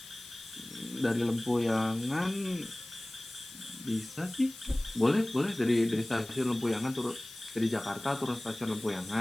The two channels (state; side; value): noise; left; hiss, 16 dB below the sound